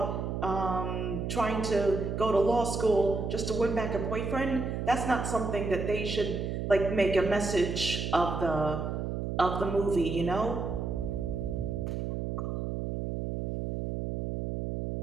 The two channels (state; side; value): noise; right; hum, 3 dB below the sound